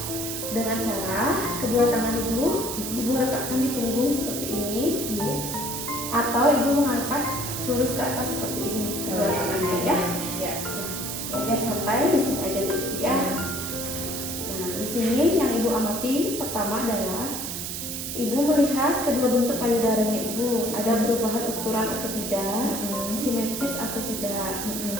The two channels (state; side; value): noise; right; hiss, 5 dB below the sound